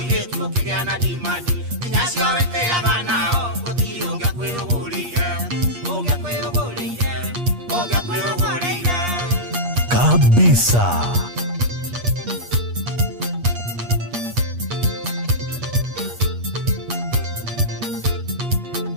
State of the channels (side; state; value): left; late; 8.4 ms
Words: ũkĩgĩa na dimandi nginya cio wĩtĩaga nao gũtirĩ ũngĩakwĩrũgũrĩire kabisa